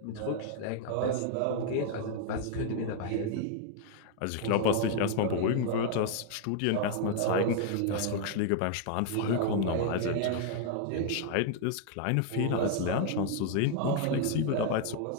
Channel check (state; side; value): different; both; correlation 0.00